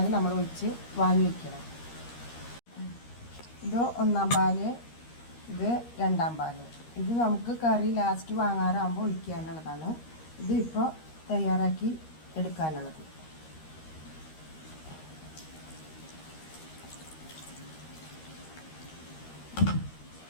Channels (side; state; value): right; late; 13 ms